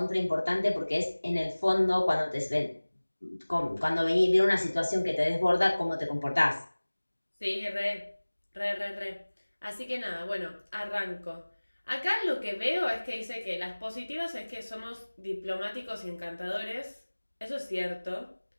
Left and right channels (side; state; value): both; inverted; correlation -1.00